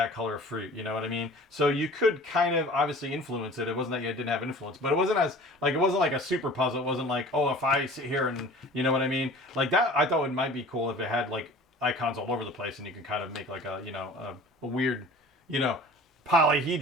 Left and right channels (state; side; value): normal; both; correlation 0.44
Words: color fruit, you know what I mean? So you could kind of obviously influence it. It wasn't that you didn't have influence, but it wasn't it wasn't like a super puzzle. It wasn't like, oh, if I sit here and, you know what I mean? Like, that, I thought it might be cool if it had, like, icons all over the place, and you could kind of make, like, a, you know, a weird, you know,